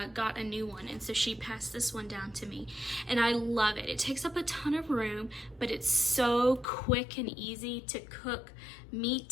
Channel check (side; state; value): right; drops out; at 6.7 s